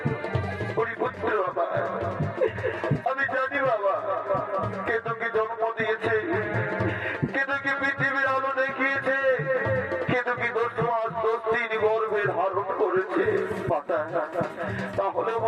পুত্র আমি জানি বাবা, কেতুকে জন্ম দিয়েছে, কেতুকে পৃথিবীর আলো দেখিয়েছে, কেতুকে 10 মাস 10 দিন গর্ভে ধারণ করেছে মাতা। তাহলে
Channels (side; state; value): both; identical; correlation 1.00